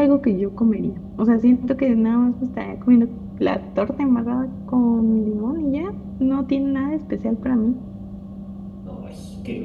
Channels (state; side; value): identical; both; correlation 1.00